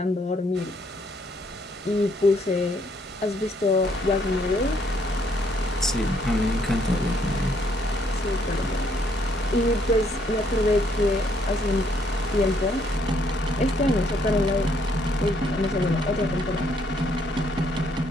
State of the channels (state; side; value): normal; both; correlation 0.69